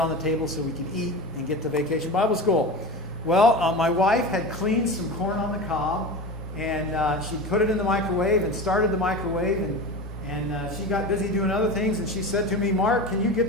the table so we could eat and get to Vacation Bible School. Well, my wife had cleaned some corn on the cob, and she put it in the microwave and started the microwave, and she got busy doing other things, and she said to me, "Mark, can you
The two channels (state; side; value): normal; both; correlation 0.28